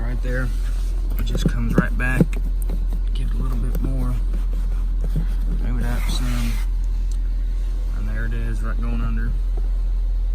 there. It just comes right back. Give it a little bit more. Move it up some. And there it is, right going under.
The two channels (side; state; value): both; identical; correlation 1.00